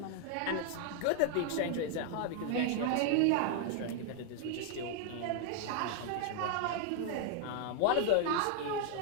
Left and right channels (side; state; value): both; different; correlation 0.00